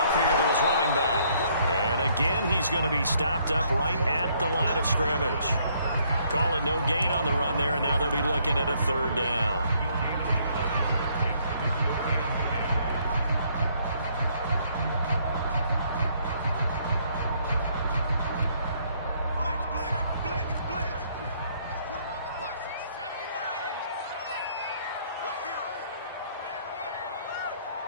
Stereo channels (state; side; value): inverted; both; correlation -0.67